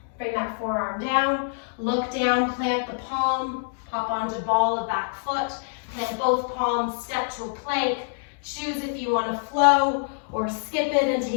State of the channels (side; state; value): right; silent; digital silence